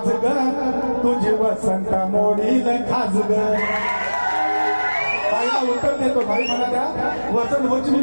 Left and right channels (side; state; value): both; inverted; correlation -1.00